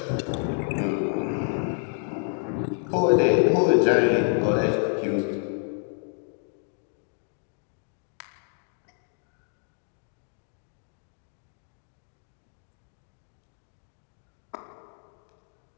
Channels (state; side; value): silent; right; 56 dB below the other